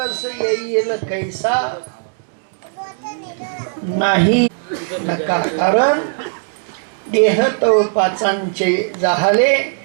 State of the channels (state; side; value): silent; left; 67 dB below the other